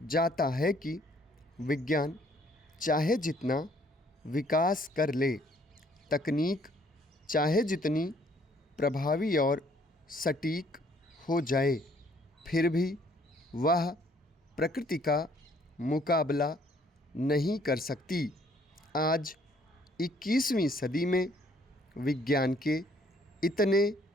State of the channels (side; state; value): both; normal; correlation 0.63